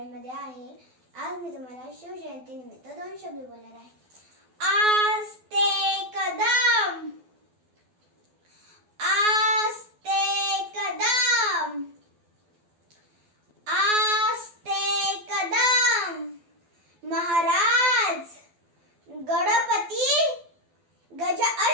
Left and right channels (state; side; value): late; left; 12 ms